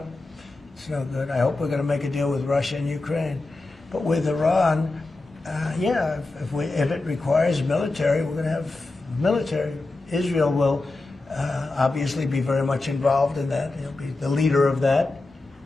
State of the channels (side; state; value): right; quieter; 3.1 dB